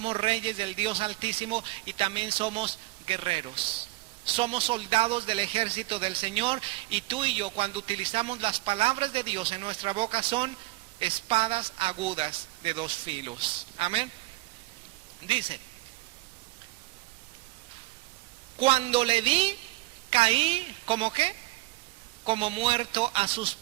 reyes del Dios Altísimo y también somos guerreros. Somos soldados del ejército del Señor, y tú y yo, cuando utilizamos las palabras de Dios en nuestra boca, son espadas agudas de 2 filos. Amén. Dice, cuando le vi, caí, ¿como qué? Como muerto a sus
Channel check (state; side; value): quieter; left; 20.9 dB